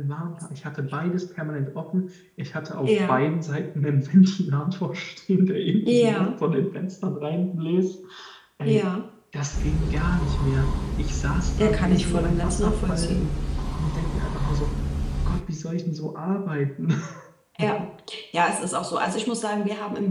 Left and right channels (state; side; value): identical; both; correlation 1.00